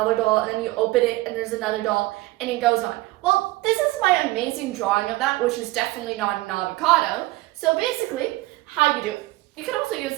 doll, and then you open it, and there's another doll, and it goes on. Well, this is my amazing drawing of that, which is definitely not an avocado. So basically, how you do it. You could also use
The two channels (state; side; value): quieter; left; 19.5 dB